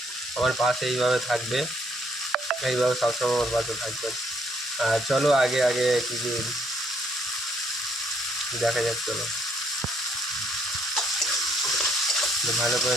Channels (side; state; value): both; normal; correlation 0.69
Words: আমার পাশে এইভাবে থাকবে, এইভাবে সবসময় আমার পাশে থাকবেন। আর চলো আগে আগে কিছু দেখা যাক। চলো ভালো করে